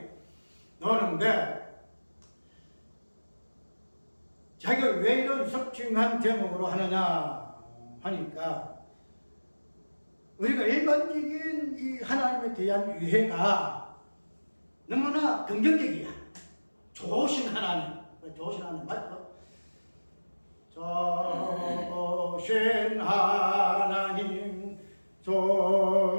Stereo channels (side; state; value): both; inverted; correlation -1.00